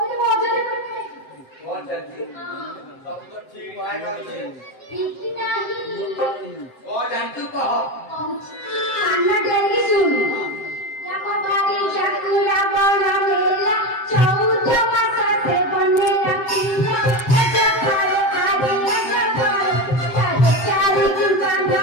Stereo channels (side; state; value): right; late; 7.7 ms